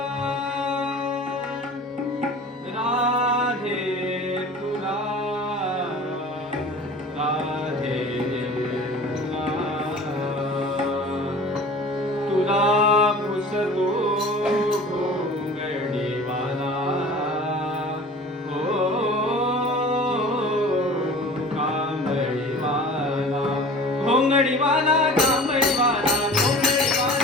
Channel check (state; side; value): normal; both; correlation 0.41